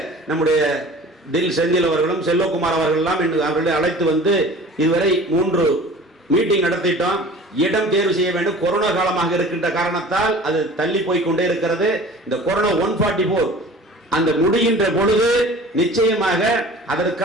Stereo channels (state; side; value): normal; both; correlation 0.43